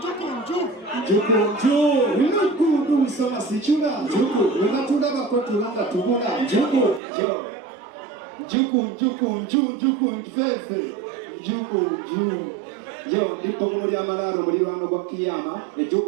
Njuku soma sichula njuku unatunda bakotulanga tubula njuku mfefe njuku yo ndipo muri amalaro muri lwano gwa kiyama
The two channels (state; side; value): drops out; left; at 7.0 s